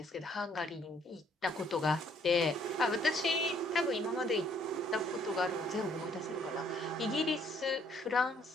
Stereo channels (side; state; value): both; normal; correlation 0.64